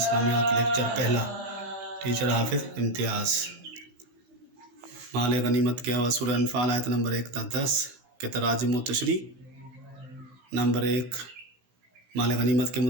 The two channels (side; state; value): left; late; 16 ms